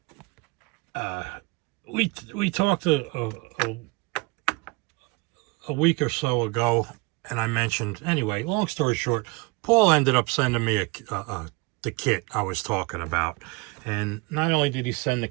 uh, we talked a week or so ago, and I mentioned anyway. Long story short, Paul ended up sending me the kit I was talking about, and not only did he send the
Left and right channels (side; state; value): left; quieter; 26.6 dB